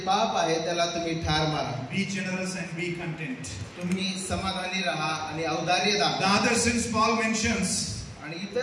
पाप आहे त्याला तुम्ही ठार मारा. Be generous and be content. तुम्ही समाधानी राहा आणि औदार्य The दाखवा. other sins Paul mentions, आणि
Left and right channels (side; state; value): both; identical; correlation 1.00